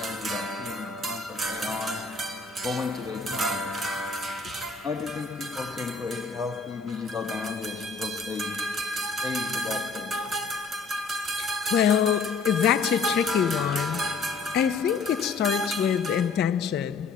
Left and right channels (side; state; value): right; quieter; 4.5 dB